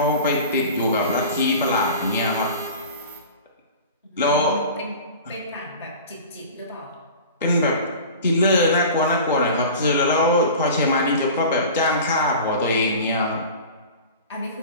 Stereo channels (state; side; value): inverted; both; correlation -0.37